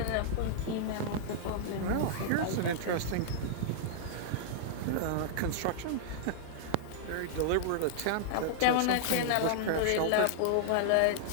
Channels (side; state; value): both; different; correlation -0.02